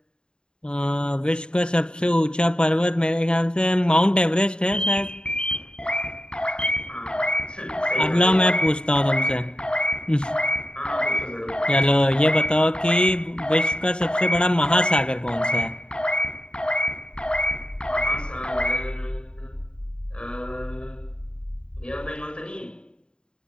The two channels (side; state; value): right; late; 0.050 ms